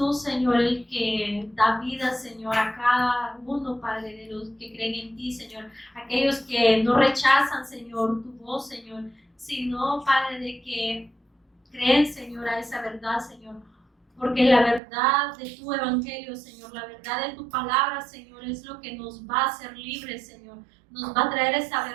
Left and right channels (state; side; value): drops out; left; at 14.8 s